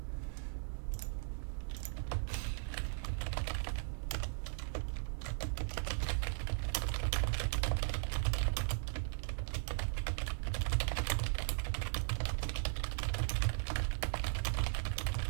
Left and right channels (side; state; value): left; silent; digital silence